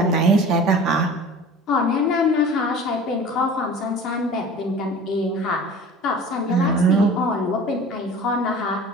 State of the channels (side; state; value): both; normal; correlation 0.41